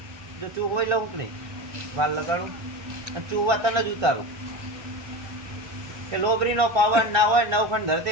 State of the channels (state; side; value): late; left; 1.3 ms